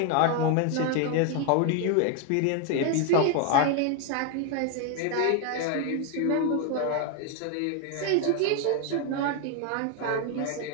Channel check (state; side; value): different; both; correlation 0.01